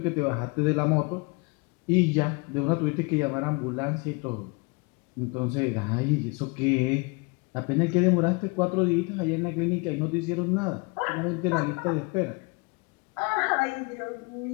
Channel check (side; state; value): right; quieter; 30.0 dB